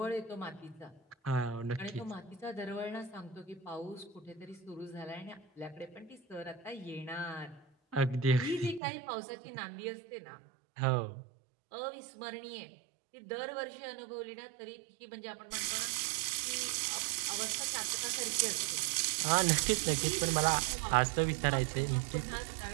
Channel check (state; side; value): drops out; left; at 8.8 s